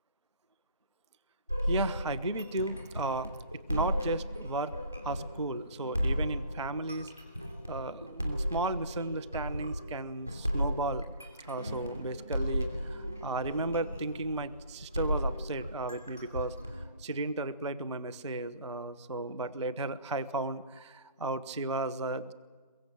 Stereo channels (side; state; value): both; inverted; correlation -0.52